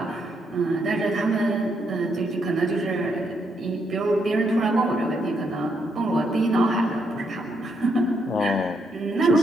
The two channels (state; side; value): normal; both; correlation 0.77